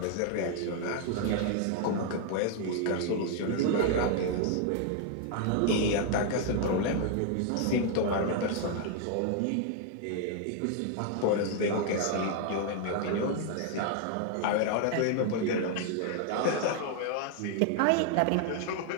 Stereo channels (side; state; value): both; different; correlation 0.00